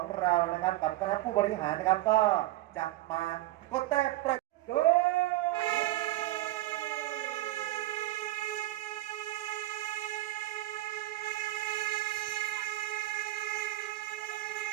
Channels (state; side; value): quieter; left; 16.7 dB